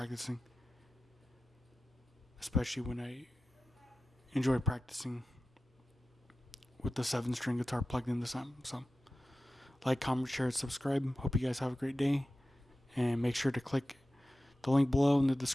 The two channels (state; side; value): normal; both; correlation 0.94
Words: especially when I enjoy practicing with the 7-string guitar plugged in this amp. So like, comment, share, and subscribe. Hope you guys have a great day, and make sure to click the link below in the